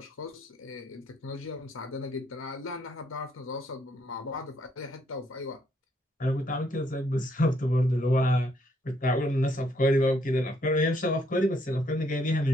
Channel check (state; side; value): normal; both; correlation 0.71